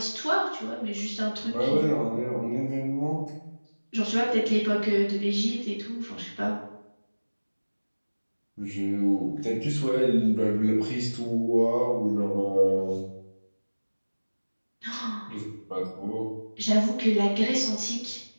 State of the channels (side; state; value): both; inverted; correlation -1.00